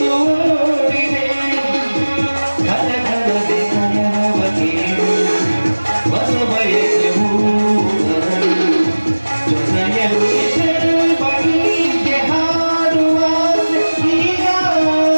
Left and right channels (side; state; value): both; inverted; correlation -1.00